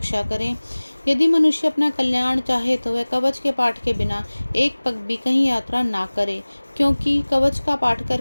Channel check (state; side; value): inverted; both; correlation -1.00